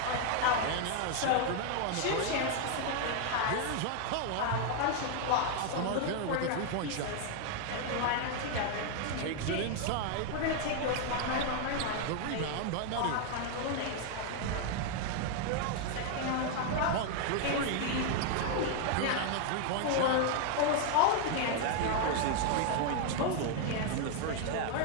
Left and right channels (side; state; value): both; different; correlation 0.00